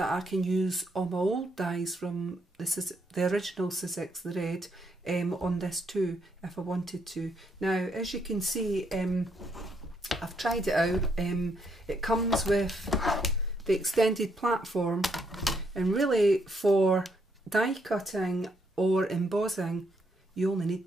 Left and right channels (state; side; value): normal; both; correlation 0.74